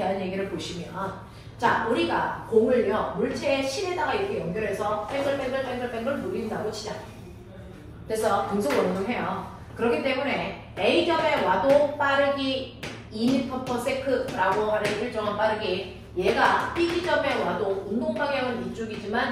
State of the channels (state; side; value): identical; both; correlation 1.00